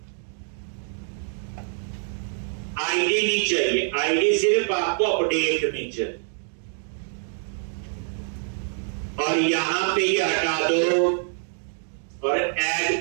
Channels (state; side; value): silent; left; 61 dB below the other